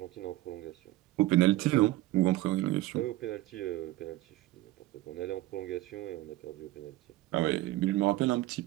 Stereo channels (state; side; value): quieter; left; 17.0 dB